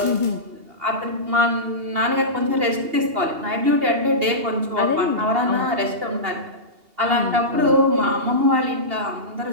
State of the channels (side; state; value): left; late; 2.8 ms